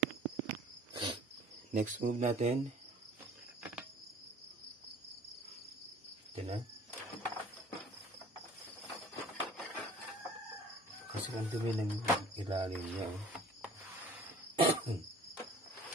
Next move natin. Ito na. Kasi ang dumi ng ilalim niya.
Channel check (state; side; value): normal; both; correlation 0.49